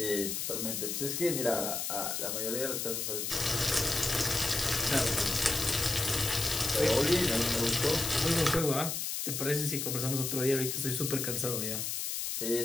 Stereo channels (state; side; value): noise; left; hiss, 2 dB below the sound